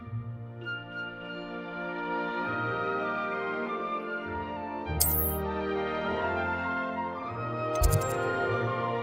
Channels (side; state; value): both; identical; correlation 1.00